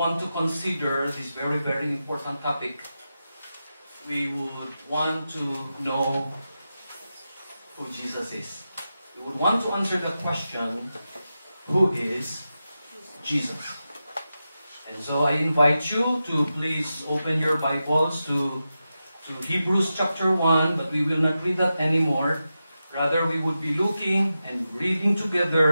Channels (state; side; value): inverted; both; correlation -0.91